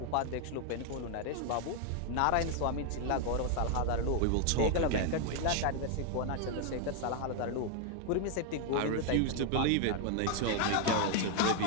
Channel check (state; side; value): different; both; correlation 0.00